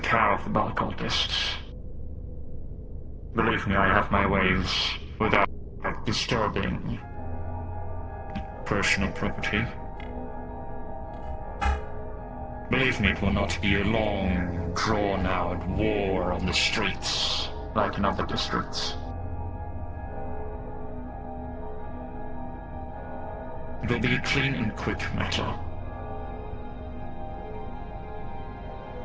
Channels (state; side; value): identical; both; correlation 1.00